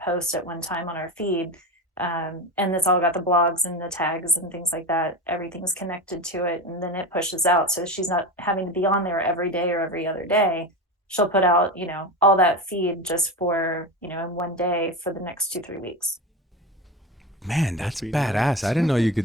posts at one time on our feed. And it's all got the blogs and the tags and things like that. Everything's connected to it, and then it pushes out. So she's not having to be on there every day or every other day. She'll put out, all that feed just for, in one day for the next 2-3 weeks. Man, that's pretty badass. nice. I didn't know you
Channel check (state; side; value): normal; both; correlation 0.23